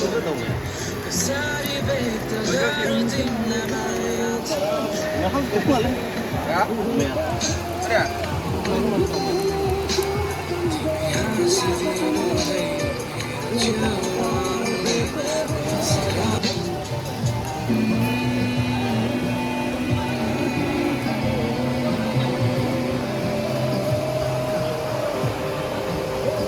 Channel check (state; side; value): identical; both; correlation 1.00